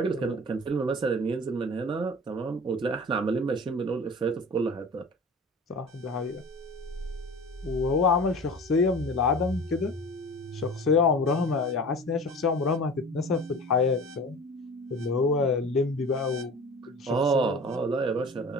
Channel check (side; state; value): both; normal; correlation 0.39